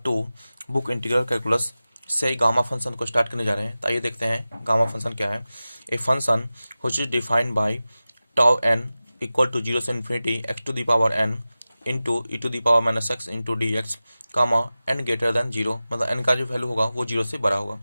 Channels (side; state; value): both; inverted; correlation -0.96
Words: book integral calculus से गामा फंक्शन को स्टार्ट करने जा रहे हैं। तो आइए देखते हैं गामा फंक्शन क्या है। A function which is defined by tau n equal to 0 से infinity x to the power n into e to the power minus x into d x comma n greater than 0, मतलब n का जो value होगा वो 0 से बड़ा होगा।